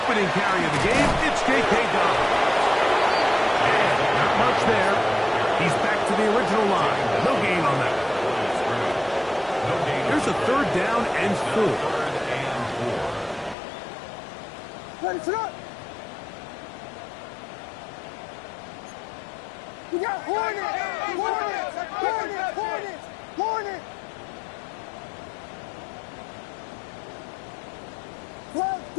carry of the game, it's J.K. Dobbins. And not much there. He's back to the original line. No gain on that. Here's a 3rd down and 4. We got Hornet! Comes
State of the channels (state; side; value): drops out; right; at 13.6 s